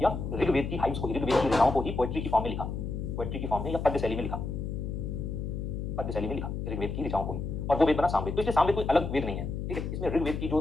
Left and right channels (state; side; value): noise; left; hum, 4 dB below the sound